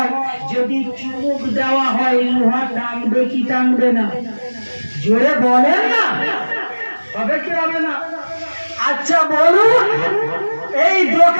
যদি চুমুক দেওয়া হয়, লোহা টানবে কি টানবে না? জোরে বলেন না, হবে কি হবে না? আচ্ছা বলুন, এই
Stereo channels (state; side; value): inverted; both; correlation -1.00